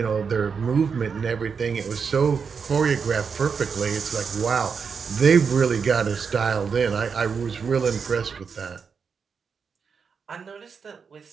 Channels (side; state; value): left; quieter; 5.9 dB